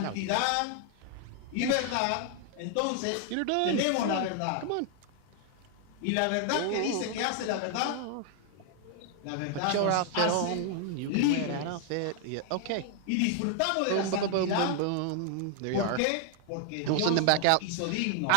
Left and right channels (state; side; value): different; both; correlation 0.00